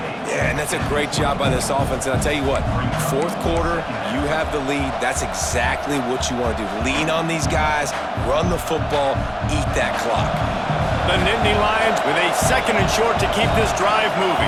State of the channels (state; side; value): identical; both; correlation 1.00